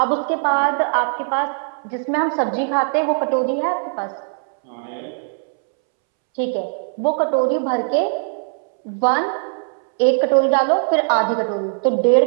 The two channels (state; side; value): silent; left; 66 dB below the other